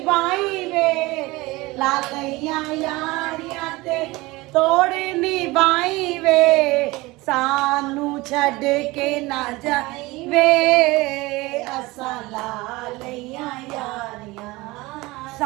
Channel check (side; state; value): left; quieter; 21.5 dB